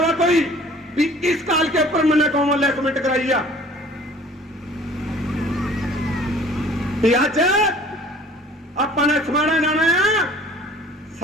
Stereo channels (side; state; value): both; normal; correlation 0.51